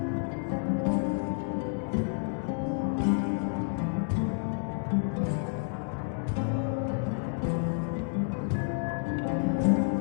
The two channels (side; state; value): right; silent; 58 dB below the other